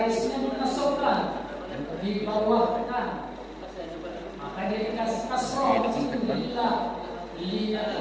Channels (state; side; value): identical; both; correlation 1.00